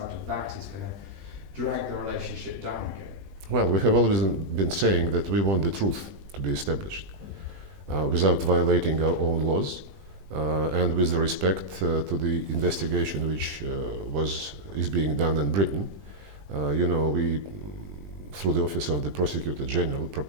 of that is going to drag the relationship down again? Well, we have always been saying that we want the truth to be established without violating our own laws and with the respect to the investigation which is being done in Britain. We, through the Office of the Prosecutor General,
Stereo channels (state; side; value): late; left; 20 ms